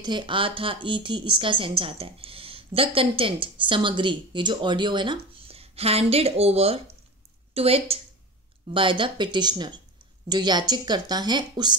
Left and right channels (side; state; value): both; normal; correlation 0.29